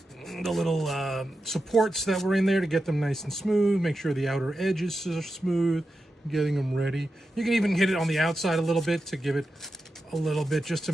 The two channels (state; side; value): normal; both; correlation 0.90